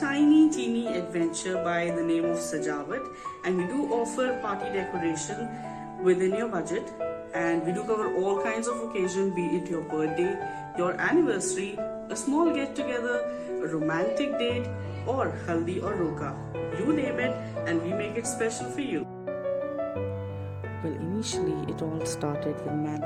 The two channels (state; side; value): identical; both; correlation 1.00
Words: adventure by the name of Sajawat, and we do offer party decoration within your budget, and we do cover all kinds of occasion, be it your birthday, your anniversary, a small get together, a romantic date, or Haldi or Roka. You name it and we make it special for you. Well, initially it all started with